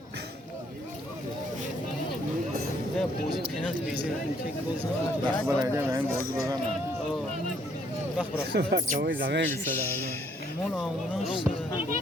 بازی پنالتی بیزه یک گل زدن وقت برای من بازی بزنم وقت برای Acabou exame que مال آموناش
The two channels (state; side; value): normal; both; correlation 0.66